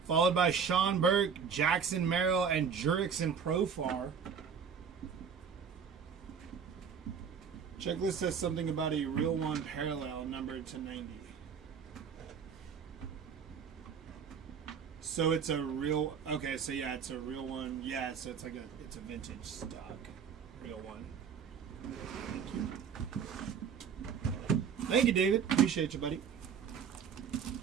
Followed by Sean Burke, Jackson Merrill, and Jurickson Profar. Checklist says something about a real one parallel numbered to 90. So it's a real, okay, so yeah, it's a real one. Yeah, so it's like it's a vintage stock. Real one. Thank you. Thank you, David. Appreciate you, buddy.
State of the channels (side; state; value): left; quieter; 6.8 dB